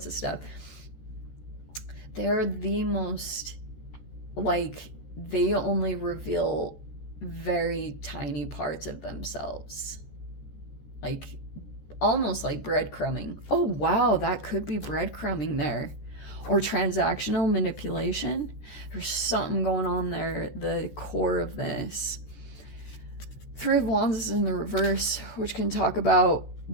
of stuff. They're the most, like, they only reveal very tiny parts of themselves. Like, almost like breadcrumbing. Oh, wow, that could be breadcrumbing there. Or transactional manipulation. There's something going on there, the core of this. 3 of Wands is in the reverse, which can talk about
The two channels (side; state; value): right; late; 14 ms